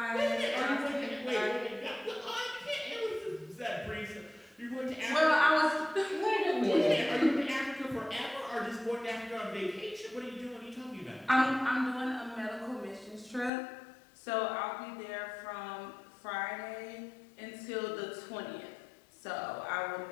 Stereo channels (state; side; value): drops out; right; at 13.5 s